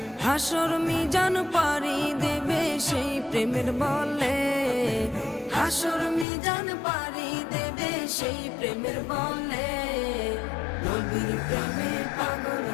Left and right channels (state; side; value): drops out; right; at 6.2 s